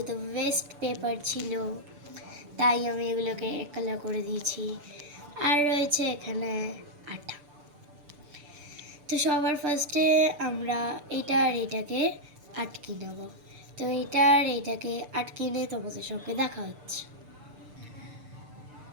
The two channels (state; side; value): late; left; 6.8 ms